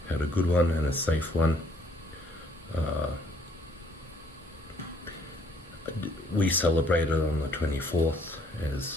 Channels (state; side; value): normal; both; correlation 0.63